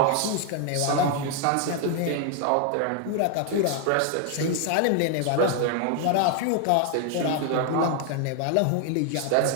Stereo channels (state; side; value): different; both; correlation 0.00